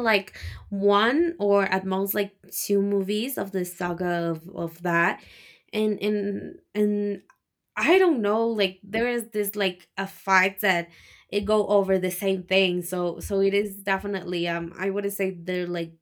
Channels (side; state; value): both; identical; correlation 1.00